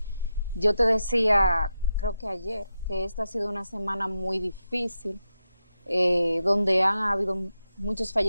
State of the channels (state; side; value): inverted; both; correlation -0.88